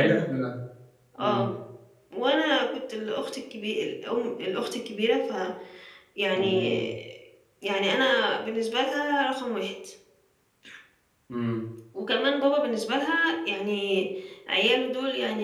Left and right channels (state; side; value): identical; both; correlation 1.00